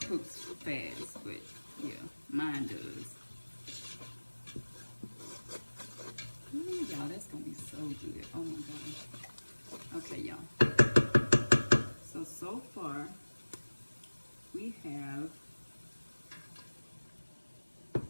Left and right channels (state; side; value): inverted; both; correlation -1.00